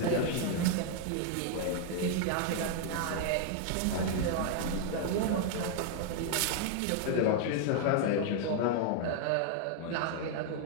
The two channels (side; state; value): both; different; correlation 0.00